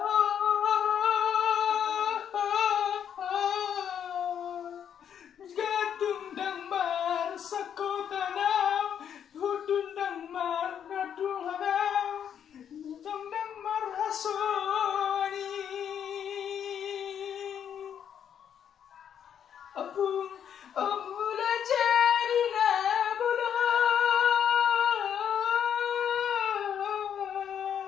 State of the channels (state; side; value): quieter; right; 8.7 dB